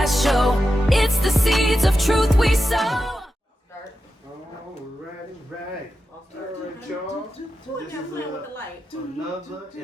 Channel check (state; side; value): normal; both; correlation 0.90